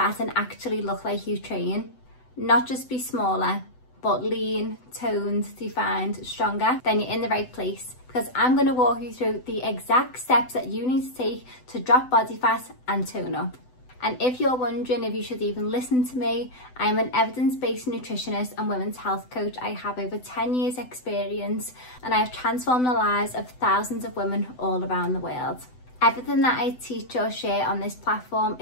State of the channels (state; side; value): late; right; 7.9 ms